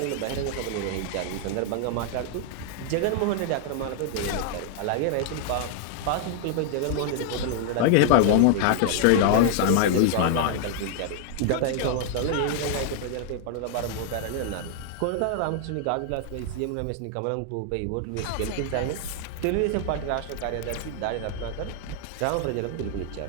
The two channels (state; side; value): different; both; correlation 0.00